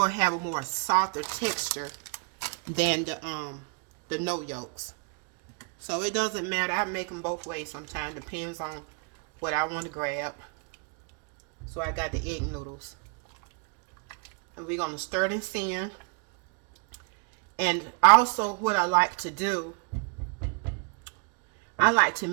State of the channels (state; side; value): quieter; left; 34.7 dB